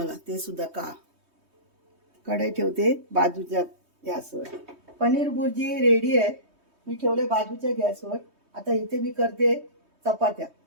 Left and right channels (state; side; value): late; left; 3.2 ms